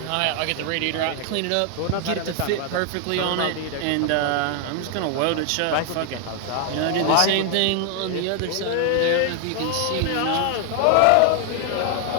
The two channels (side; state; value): both; different; correlation 0.00